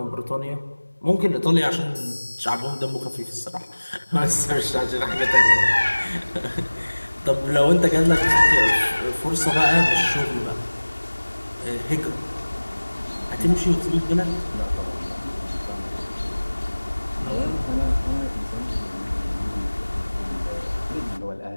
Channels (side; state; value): both; inverted; correlation -1.00